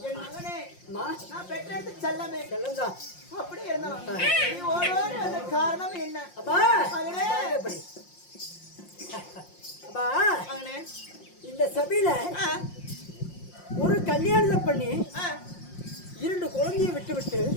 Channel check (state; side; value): late; right; 5.6 ms